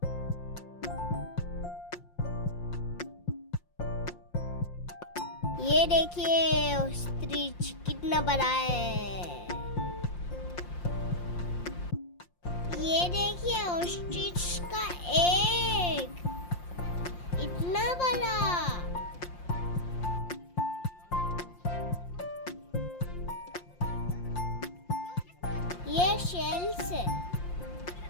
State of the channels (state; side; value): late; right; 5.7 ms